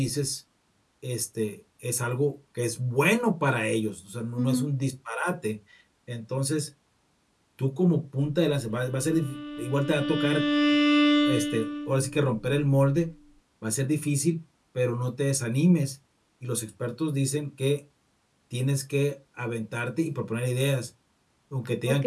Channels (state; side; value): identical; both; correlation 1.00